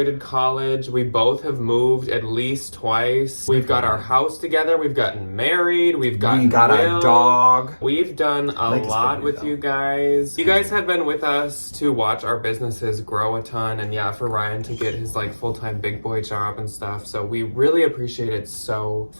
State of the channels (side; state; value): both; inverted; correlation -1.00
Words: college. We both have moved at least twice. We've got our house together. We've gotten married. We got our dog. We've done a lot with you guys. You guys have been with us to watch our businesses grow a ton, and yeah, for Ryan to get his like full-time big boy job and stuff. So we really appreciate it so